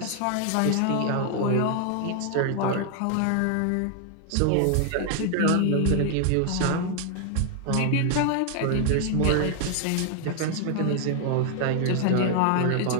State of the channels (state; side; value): different; both; correlation 0.00